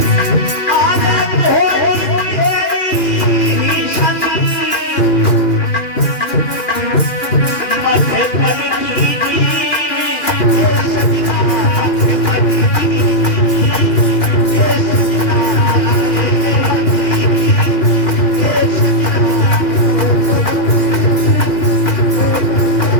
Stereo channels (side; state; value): right; late; 2.4 ms